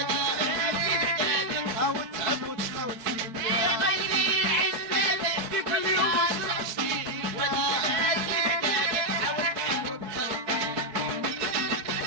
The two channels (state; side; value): late; left; 4.5 ms